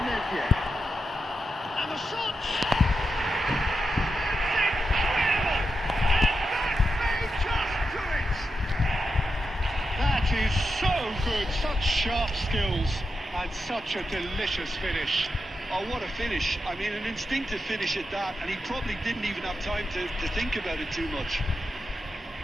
Nevia. And the shot! That is so good, such sharp skills and such a delicious finish. Oh, what a finish. I mean, an instinctive finish at that, and he probably didn't even have time to think about it too much.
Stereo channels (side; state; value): both; normal; correlation 0.88